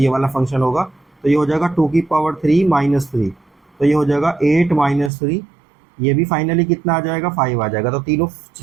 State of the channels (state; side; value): drops out; left; at 5.1 s